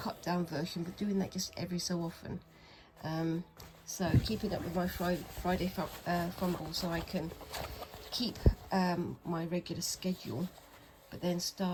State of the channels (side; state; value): both; identical; correlation 1.00